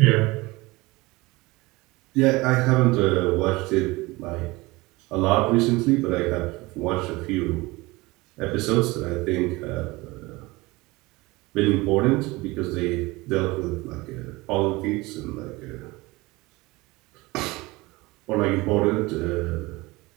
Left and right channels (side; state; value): left; quieter; 22.1 dB